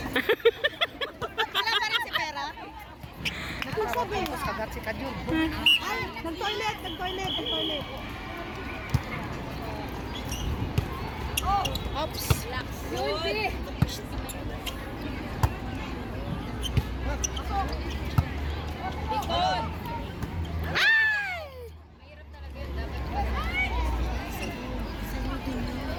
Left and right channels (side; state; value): both; identical; correlation 1.00